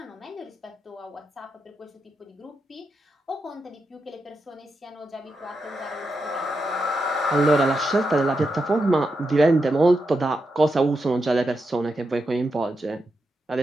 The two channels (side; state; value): both; normal; correlation 0.86